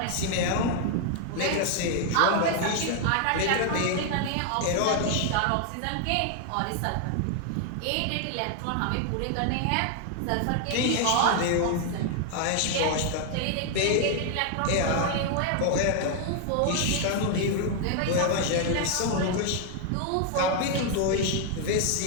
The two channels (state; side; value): different; both; correlation 0.00